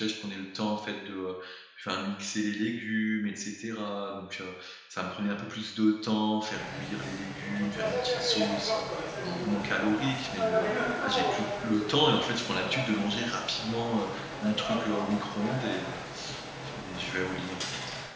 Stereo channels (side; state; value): both; identical; correlation 1.00